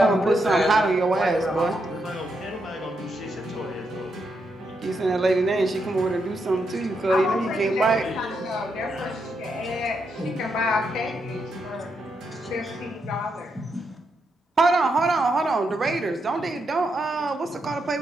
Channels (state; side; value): normal; both; correlation 0.82